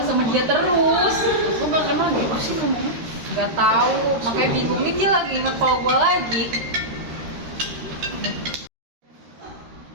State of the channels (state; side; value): late; left; 13 ms